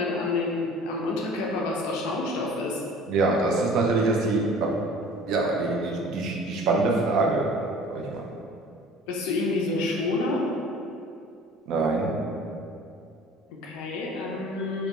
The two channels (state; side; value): normal; both; correlation 0.46